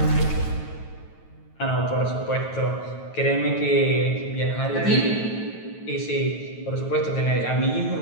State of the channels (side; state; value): right; late; 9.2 ms